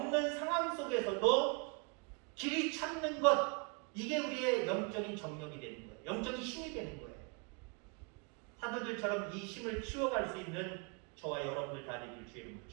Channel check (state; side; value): quieter; left; 34.9 dB